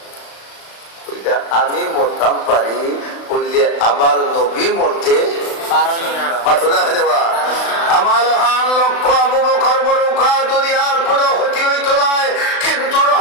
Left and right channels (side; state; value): right; late; 35 ms